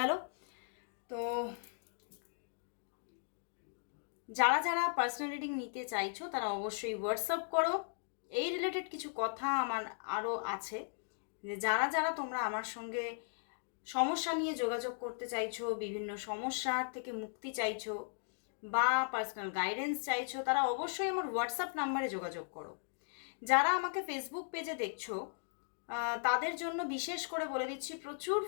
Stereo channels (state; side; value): silent; right; digital silence